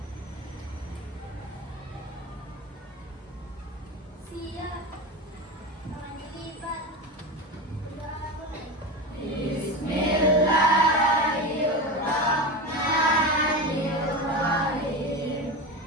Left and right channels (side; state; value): both; normal; correlation 0.23